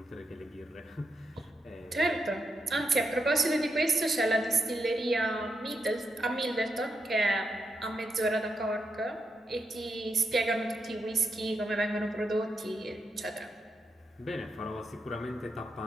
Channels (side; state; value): both; normal; correlation 0.84